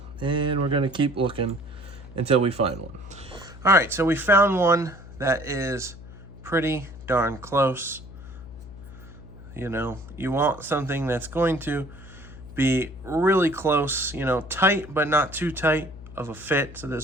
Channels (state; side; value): noise; left; hum, 16 dB below the sound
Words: And we're gonna keep looking until we find one. All right, so we found one that is pretty darn close. You know, you want something that's going to be really close, you know, tight, but not too tight of a fit. So